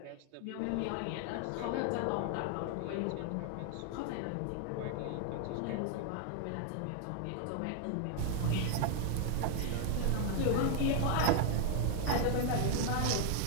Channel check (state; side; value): different; both; correlation 0.00